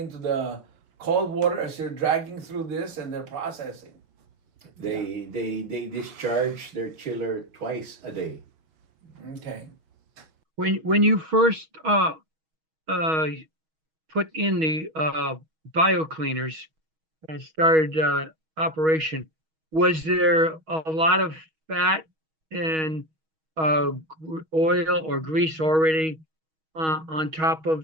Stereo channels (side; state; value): left; late; 6.3 ms